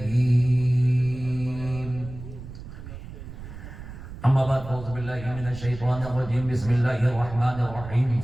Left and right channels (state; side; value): noise; right; rumble, 13 dB below the sound